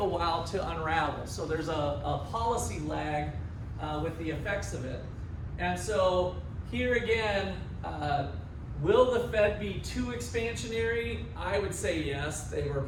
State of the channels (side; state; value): both; identical; correlation 1.00